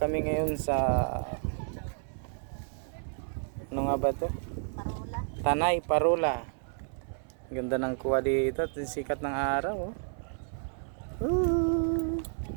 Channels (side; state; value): left; silent; 57 dB below the other